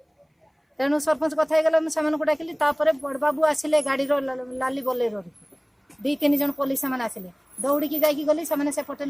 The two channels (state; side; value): identical; both; correlation 1.00